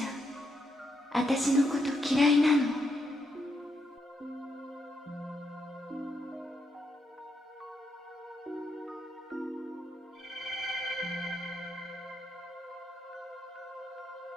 ゃん、私のこと嫌いなの？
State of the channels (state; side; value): normal; both; correlation 0.80